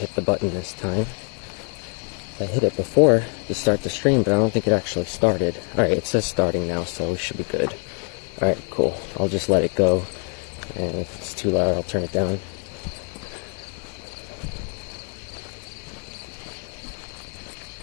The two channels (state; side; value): quieter; right; 37.9 dB